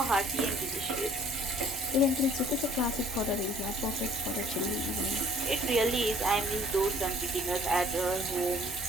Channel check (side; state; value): both; normal; correlation 0.56